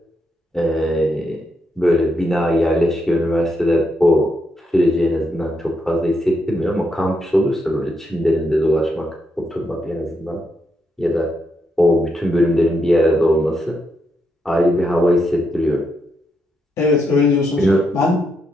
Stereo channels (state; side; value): normal; both; correlation 0.80